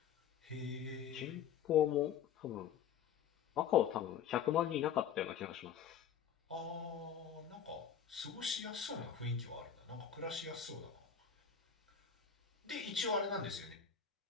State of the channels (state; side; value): quieter; right; 8.1 dB